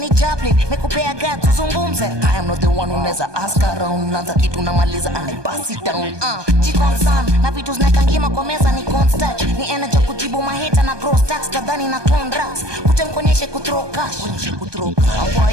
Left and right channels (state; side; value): late; left; 1.2 ms